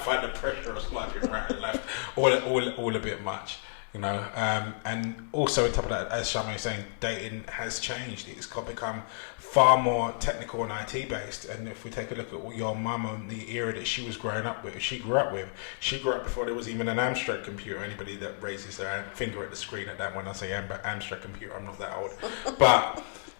the pressure of swiping right and left all a bit much, you know. And also on top of that, as Charmaine was saying, dating has changed. It's become far more technical and IT based. And if we take a look at your mum and the era that she was growing up with, she grew up before there was even an Amstrad computer. Anybody that raises their finger at the screen at that, when I say Amstrad computer, I'm not that old. But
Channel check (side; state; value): right; silent; digital silence